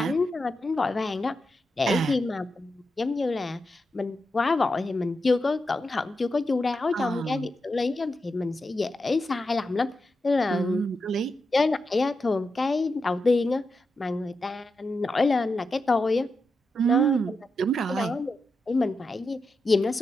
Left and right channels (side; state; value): both; normal; correlation 0.87